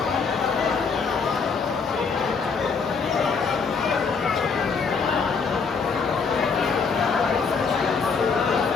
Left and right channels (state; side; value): quieter; right; 5.3 dB